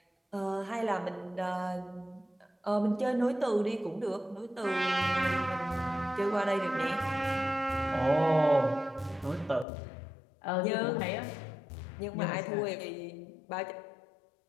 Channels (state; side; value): drops out; right; at 9.7 s